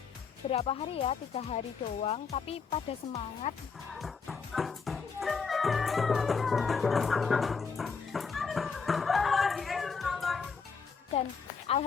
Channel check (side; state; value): right; quieter; 5.4 dB